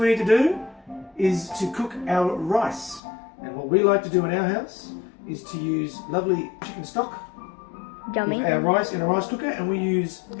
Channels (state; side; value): drops out; right; at 3.0 s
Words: need to do is to cook our rice. And what we like to do in our house is to use lovely chicken stock. Yummy. With our rice in a rice cooker, and we use